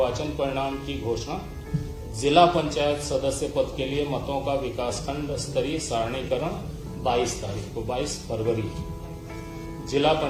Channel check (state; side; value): identical; both; correlation 1.00